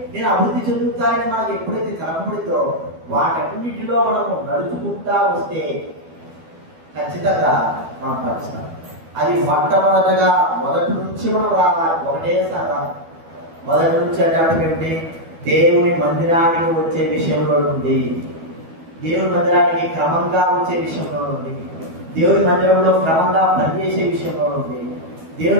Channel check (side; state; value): left; late; 12 ms